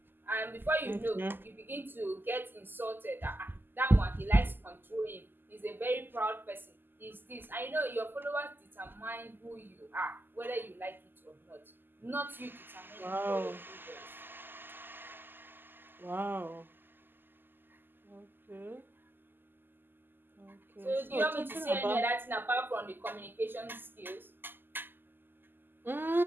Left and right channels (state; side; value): late; left; 0.094 ms